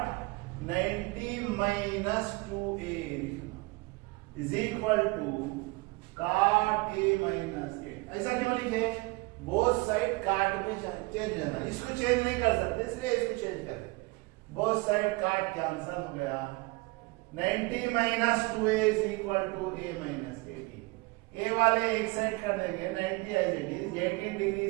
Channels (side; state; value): left; quieter; 24.4 dB